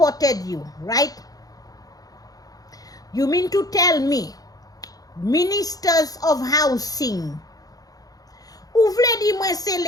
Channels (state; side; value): late; right; 0.18 ms